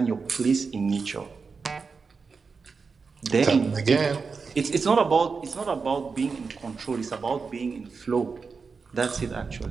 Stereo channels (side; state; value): left; quieter; 5.0 dB